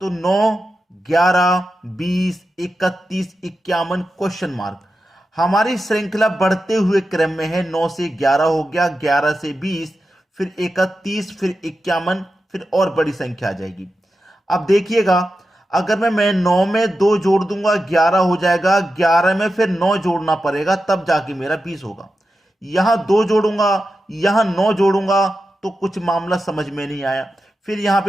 तो 9, 11, 20, 31, 51 क्वेश्चन मार्क। हमारी श्रृंखला बढ़ते हुए क्रम में है। 9 से 11 हो गया, 11 से 20, फिर 31, फिर 51, फिर और बड़ी संख्या आ जाएगी। अब देखिएगा, अगर मैं 9 में 2 जोड़ दूंगा 11 हो जाएगा, 11 में फिर 9 जोड़ना पड़ेगा तब जाके मेरा 20 होगा। यहां 2 जोड़ूंगा, यहां 9 जोड़ूंगा तो कुछ मामला समझ में नहीं आया। फिर यहां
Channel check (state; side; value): normal; both; correlation 0.91